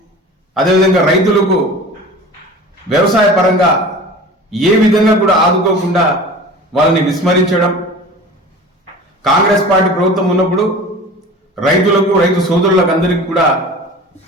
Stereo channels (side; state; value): both; normal; correlation 0.38